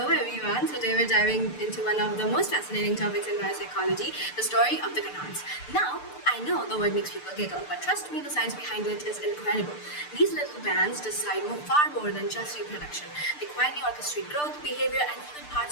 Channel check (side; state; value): right; late; 6.7 ms